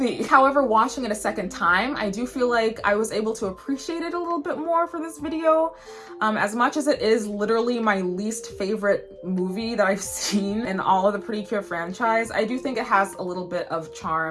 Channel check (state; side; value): identical; both; correlation 1.00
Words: However, watching it a second time, I do feel like I was able to appreciate it a little bit more for this video. As much as it is literally my least favorite movie that I've seen in all of the Precure franchise, I do think it has a little bit of